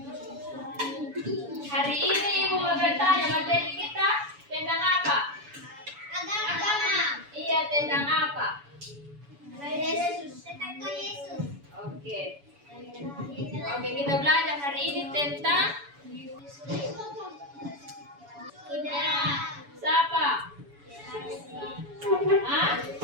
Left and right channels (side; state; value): left; late; 7.0 ms